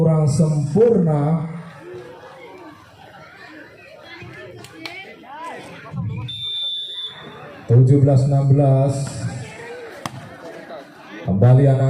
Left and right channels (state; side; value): identical; both; correlation 1.00